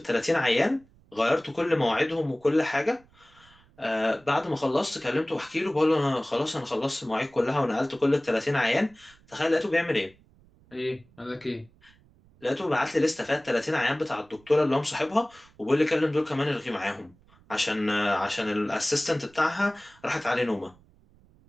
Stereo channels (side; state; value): right; noise; rumble, 29 dB below the sound